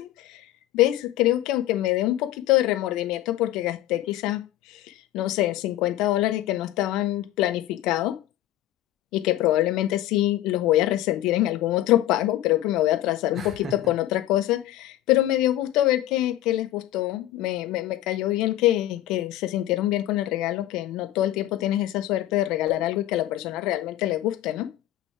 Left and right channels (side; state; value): right; quieter; 14.2 dB